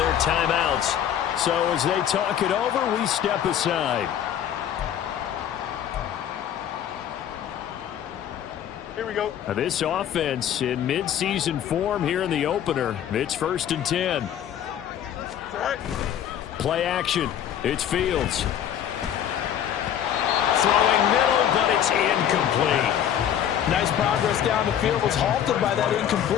timeouts. So as they talk it over, we step aside. Here we go. Now this offense in midseason form here in the opener. It's 1st and 10. All right. Play action. It's Fields. Throwing middle, but it's incomplete. Nice progress down the field was halted by that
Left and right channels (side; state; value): right; quieter; 9.9 dB